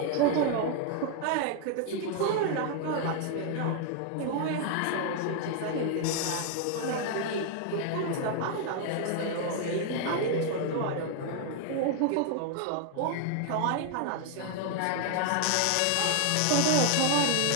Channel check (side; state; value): both; different; correlation 0.00